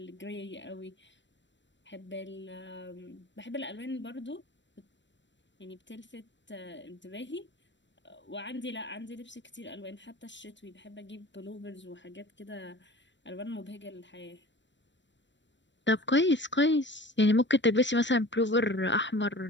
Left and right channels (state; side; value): late; right; 0.53 ms